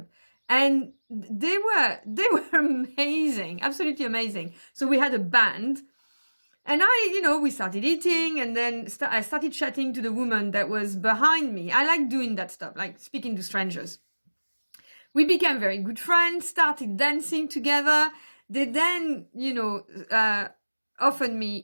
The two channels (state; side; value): inverted; both; correlation -1.00